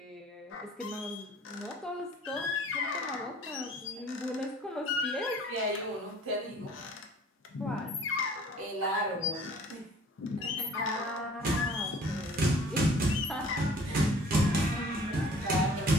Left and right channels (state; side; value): normal; both; correlation 0.51